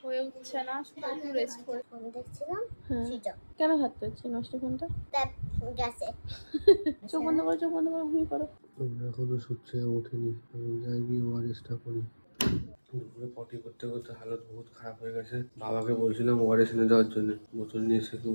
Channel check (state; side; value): inverted; both; correlation -1.00